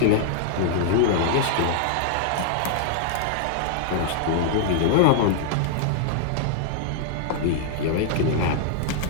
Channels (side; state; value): both; different; correlation -0.01